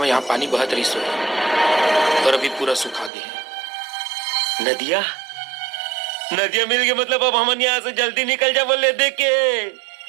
यहाँ पानी बहत रही सो और अभी पूरा सूखा गया है। नदिया नदिया मिल गए, मतलब अब हम यहाँ से जल्दी निकल जा बोले देखे।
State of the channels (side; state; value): left; drops out; at 3.1 s